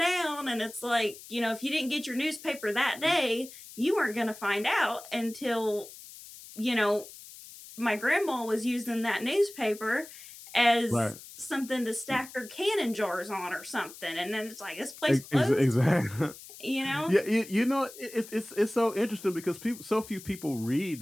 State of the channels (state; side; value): noise; left; hiss, 17 dB below the sound